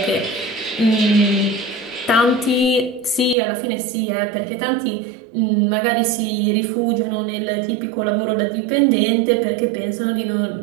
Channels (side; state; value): left; drops out; at 3.4 s